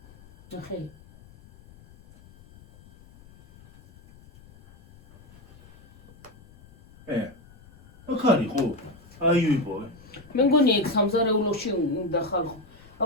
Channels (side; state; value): left; noise; rumble, 24 dB below the sound